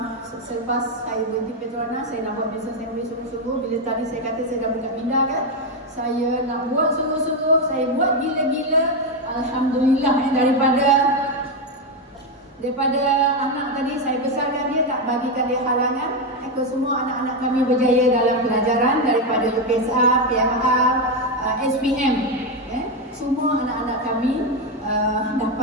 Selepas saya berhenti Petronas, saya nak buat bisnes yang sungguh-sungguh. Bila tadi saya kata saya dah buka minda kan, saya nak buat sungguh-sungguh. Saya buat gila-gila. Alhamdulillah daripada anak tadi saya besarkan dia, tak bagikan dia halangan. Semua anak-anak kami berjaya dalam pelajaran daripada UPSR, PMR, SPM. Semua anak-anak kami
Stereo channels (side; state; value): both; normal; correlation 0.07